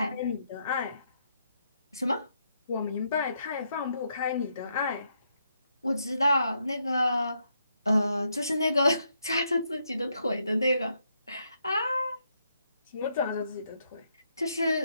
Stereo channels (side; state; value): both; inverted; correlation -0.78